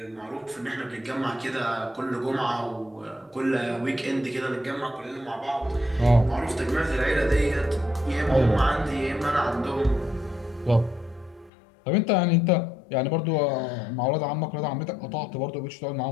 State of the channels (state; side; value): drops out; right; at 11.5 s